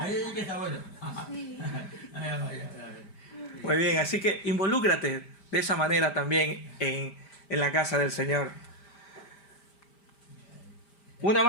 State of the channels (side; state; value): right; late; 5.0 ms